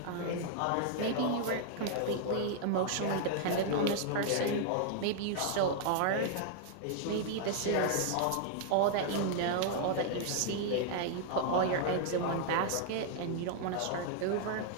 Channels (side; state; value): both; different; correlation -0.01